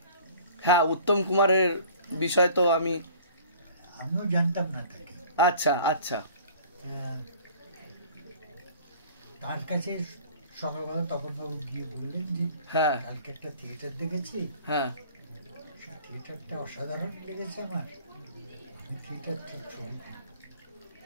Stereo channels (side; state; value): both; inverted; correlation -0.49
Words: হ্যাঁ, উত্তম কুমারের বিষয় তো আমিও জানতাম না তাকে। আচ্ছা আচ্ছা। তার কাছে সকালবেলা তখন বাবু গিয়ে বললেন যে হ্যাঁ কালকে একটা থিয়েটার দেখেছি, হ্যাঁ থিয়েটারটা অসাধারণ লেগেছে আমার, আমি থিয়েটারের